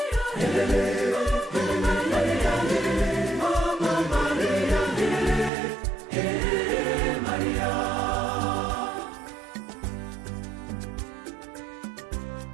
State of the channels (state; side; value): drops out; left; at 5.5 s